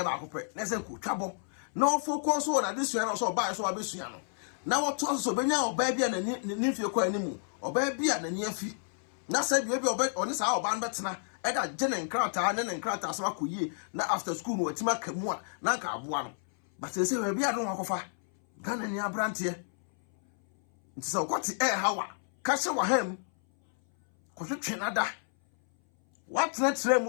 Nessa could trouble. No focus on this year or so by so abisiano. Now what toss of Benya or baby and the nephew quite anymore, or baby and the near fee. Now said you be on this hour band better. eda jene nkrata ne nkrata so akoyie na after school no watima kamu a na nka aboa no but say we bia don akofa Ghana ni abrante nti so kwoti hawa ka se wa ham ko twenada what let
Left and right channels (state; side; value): silent; right; 57 dB below the other